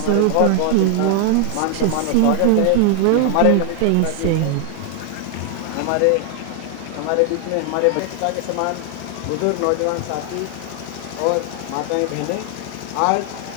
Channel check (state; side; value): different; both; correlation 0.00